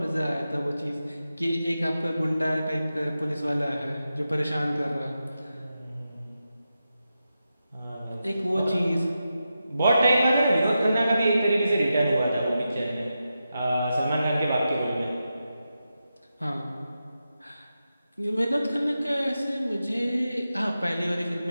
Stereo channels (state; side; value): inverted; both; correlation -0.90